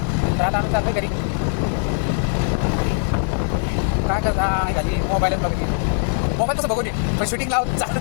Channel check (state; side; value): silent; right; digital silence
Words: तर आता आम्ही चालतो घरी. काय करता घरी मोबाईलच बघते, मोबाईल कसं बघू नये पण शूटिंग लावून